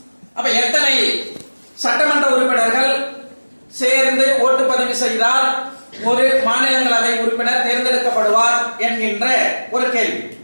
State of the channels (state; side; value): inverted; both; correlation -1.00